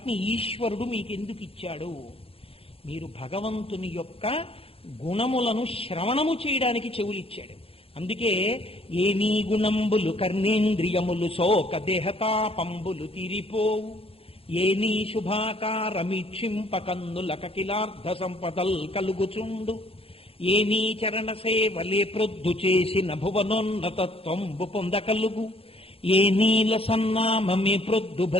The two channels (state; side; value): late; right; 0.27 ms